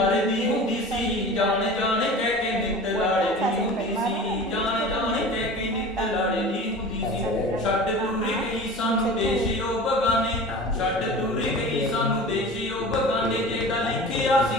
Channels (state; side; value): normal; both; correlation 0.37